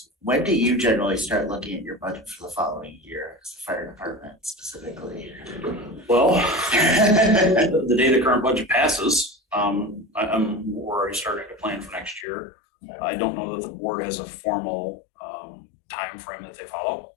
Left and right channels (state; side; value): drops out; right; at 12.2 s